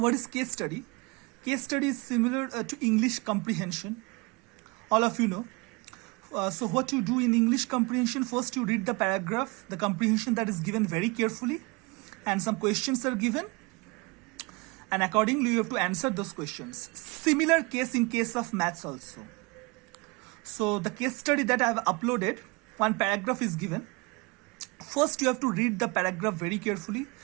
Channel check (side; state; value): left; quieter; 27.1 dB